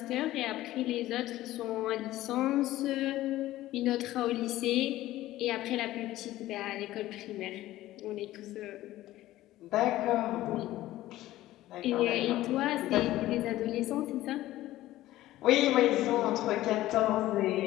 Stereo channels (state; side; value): quieter; right; 15.5 dB